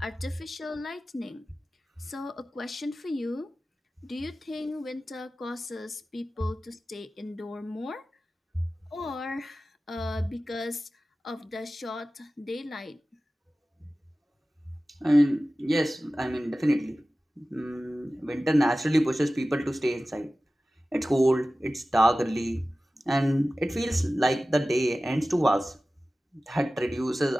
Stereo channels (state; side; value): normal; both; correlation 0.96